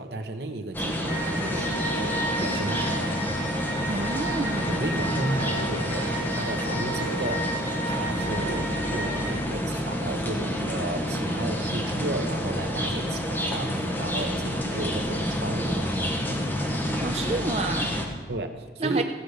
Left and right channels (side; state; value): both; normal; correlation 0.53